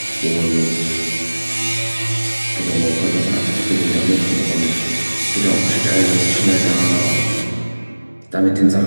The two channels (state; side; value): inverted; both; correlation -1.00